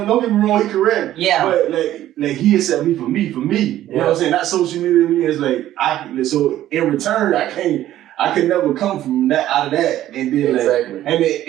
get me wrong, he correct. Yeah. But like he accept me for me. You know what I'm saying? Not social media me. It's like so in return I can never come from that out of that, and then exactly. And then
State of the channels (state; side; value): quieter; left; 13.2 dB